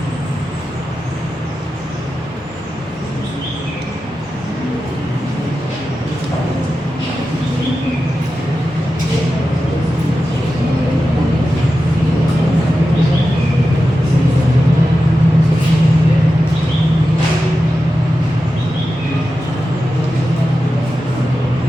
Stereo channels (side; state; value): both; normal; correlation 0.92